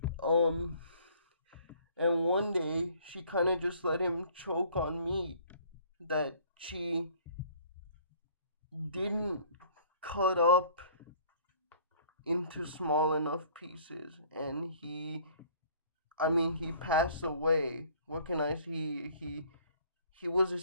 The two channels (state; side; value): inverted; both; correlation -0.55